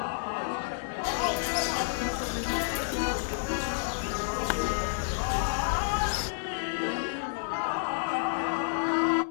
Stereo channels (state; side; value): silent; right; digital silence